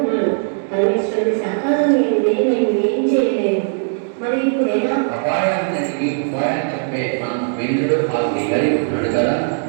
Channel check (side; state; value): left; silent; digital silence